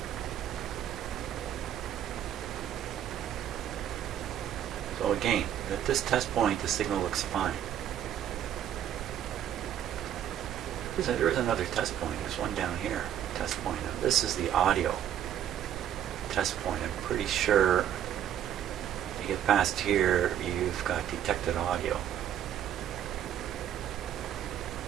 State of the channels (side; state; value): left; quieter; 10.3 dB